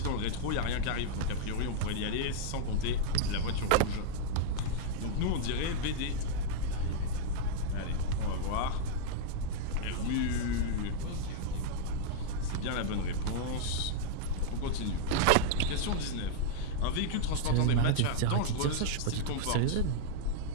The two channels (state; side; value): different; both; correlation -0.01